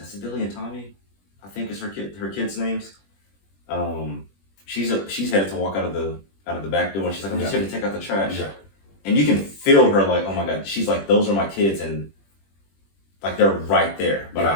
Tommy, I think is her kids' names. She's headed to walk out of the back door, and she's like, I'm just here to take out the trash. Yeah. And you can feel her like, oh my God, she's like, those are my kids, and like they're right there. But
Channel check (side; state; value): right; late; 21 ms